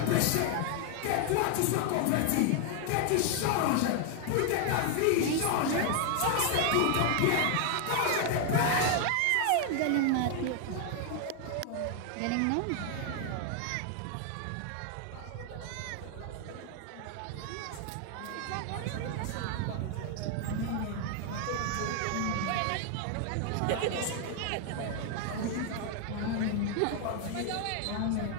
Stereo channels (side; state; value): both; different; correlation 0.00